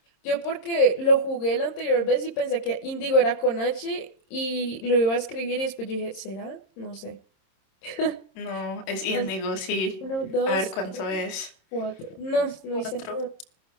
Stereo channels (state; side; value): late; right; 26 ms